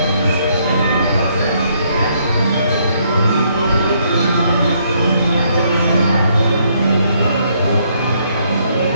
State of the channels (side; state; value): both; inverted; correlation -0.70